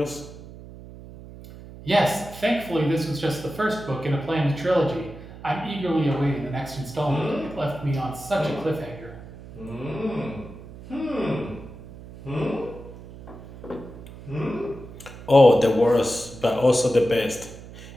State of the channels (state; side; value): noise; right; hum, 16 dB below the sound